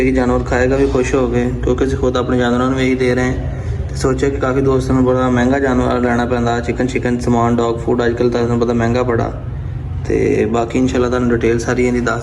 ਜਾਨਵਰ ਖਾਏਗਾ ਵੀ ਖੁਸ਼ ਹੋ ਕੇ, ਕਿਉਂਕਿ ਅਸੀਂ ਖੁਦ ਆਪਣੇ ਜਾਨਵਰਾਂ ਨੂੰ ਇਹੀ ਦੇ ਰਹੇ ਹਾਂ। ਤੇ ਸੋਚਿਆ ਕਿ ਕਾਫੀ ਦੋਸਤਾਂ ਨੂੰ ਬੜਾ ਮਹਿੰਗਾ ਜਾਨਵਰ ਲੈਣਾ ਪੈਂਦਾ, ਚਿਕਨ ਸਮਾਨ, ਡੌਗ ਫੂਡ ਅੱਜ ਕੱਲ੍ਹ ਤੁਹਾਨੂੰ ਪਤਾ ਮਹਿੰਗਾ ਬੜਾ। ਤੇ ਬਾਕੀ ਇਨਸ਼ਾਅੱਲਾ ਤੁਹਾਨੂੰ ਡਿਟੇਲ ਸਾਰੀ ਇਹਦੀ ਦੱਸ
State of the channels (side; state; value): both; identical; correlation 1.00